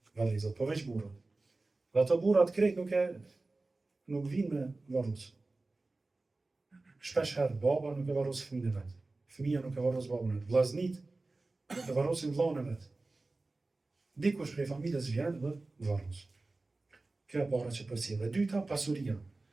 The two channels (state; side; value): quieter; left; 3.3 dB